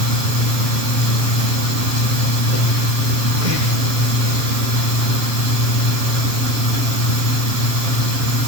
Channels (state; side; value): late; left; 7.2 ms